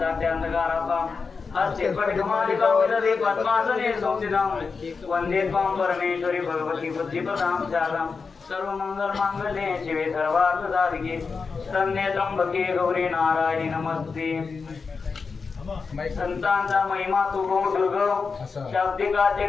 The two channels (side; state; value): right; quieter; 4.9 dB